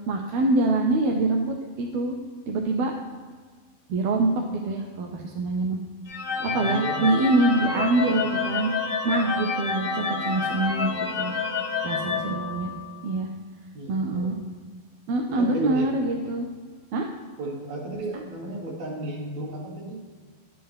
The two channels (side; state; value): left; late; 12 ms